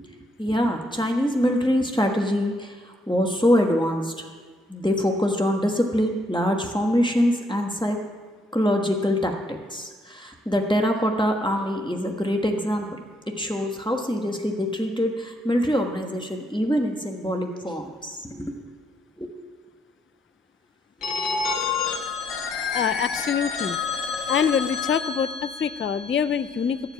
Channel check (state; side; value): normal; both; correlation 0.71